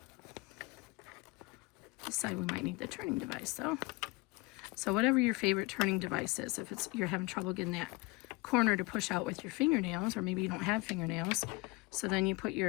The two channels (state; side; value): quieter; right; 23.6 dB